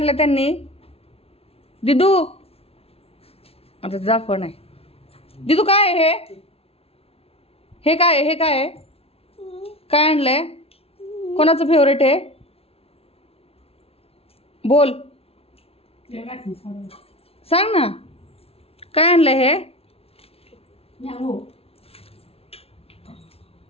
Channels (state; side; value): late; right; 0.29 ms